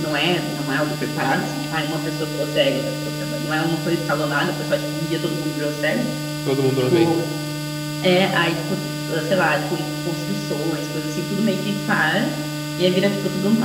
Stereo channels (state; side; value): identical; both; correlation 1.00